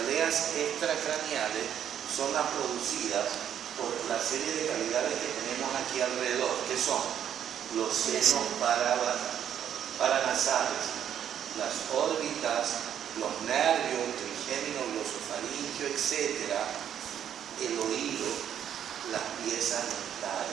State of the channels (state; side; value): quieter; left; 9.5 dB